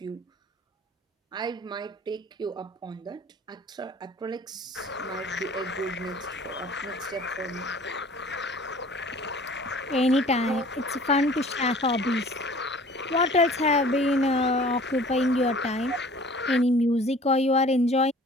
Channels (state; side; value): normal; both; correlation 0.48